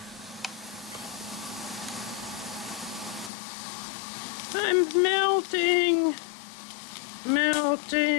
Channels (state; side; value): drops out; right; at 3.3 s